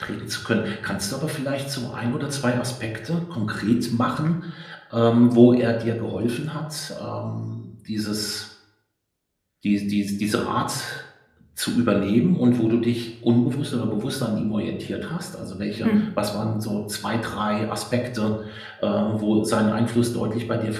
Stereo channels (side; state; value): both; identical; correlation 1.00